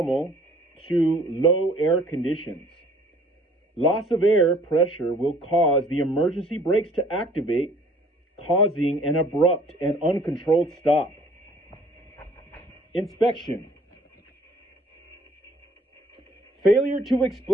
to low air conditions. Loss of air pressure will cause the emergency brakes to activate, causing an abrupt and uncontrolled stop. Inspection. Failure to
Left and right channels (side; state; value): both; normal; correlation 0.56